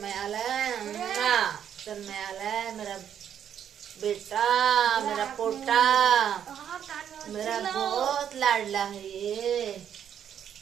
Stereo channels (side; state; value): left; quieter; 9.1 dB